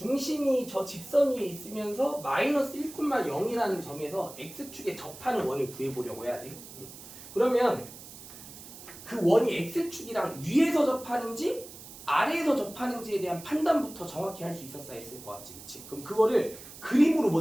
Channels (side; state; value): right; noise; hiss, 16 dB below the sound